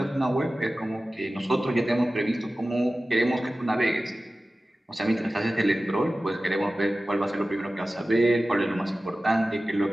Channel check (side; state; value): both; normal; correlation 0.96